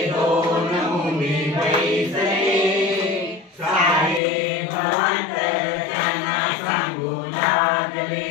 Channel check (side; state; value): right; drops out; at 4.2 s